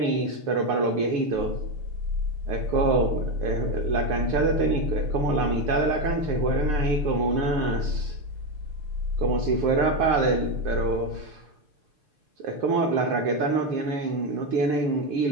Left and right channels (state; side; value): late; left; 6.7 ms